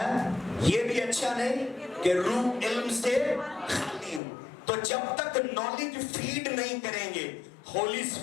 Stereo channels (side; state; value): right; drops out; at 4.2 s